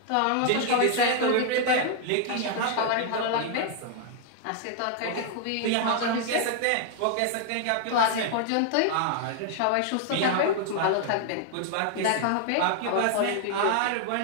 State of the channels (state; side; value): different; both; correlation 0.00